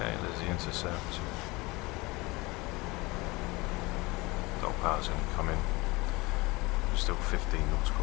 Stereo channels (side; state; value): right; quieter; 23.3 dB